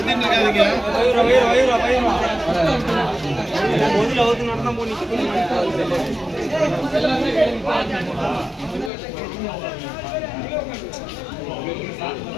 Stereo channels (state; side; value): drops out; right; at 8.9 s